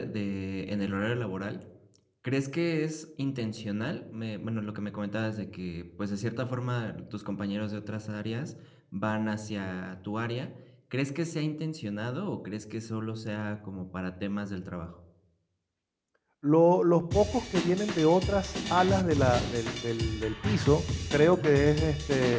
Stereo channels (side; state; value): both; identical; correlation 1.00